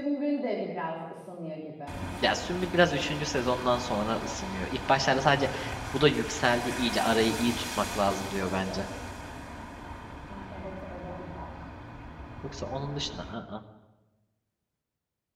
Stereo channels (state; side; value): identical; both; correlation 1.00